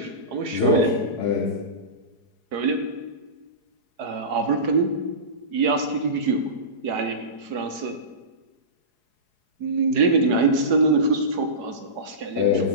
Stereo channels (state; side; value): late; left; 4.8 ms